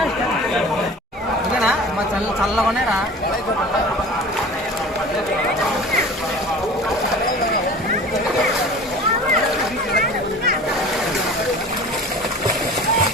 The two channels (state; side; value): normal; both; correlation 0.40